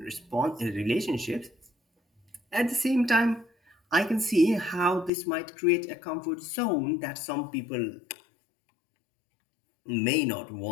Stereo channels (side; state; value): right; drops out; at 5.1 s